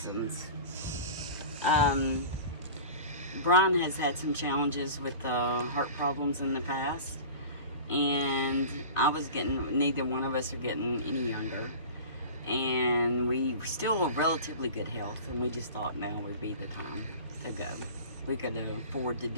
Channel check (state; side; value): inverted; both; correlation -0.37